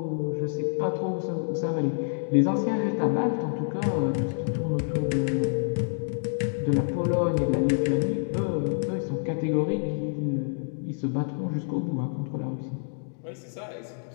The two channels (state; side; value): silent; right; digital silence